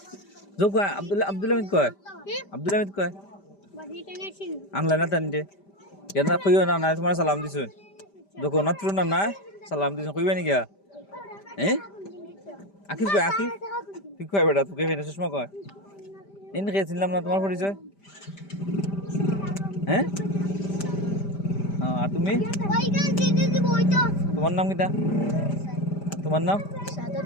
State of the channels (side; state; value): right; late; 5.1 ms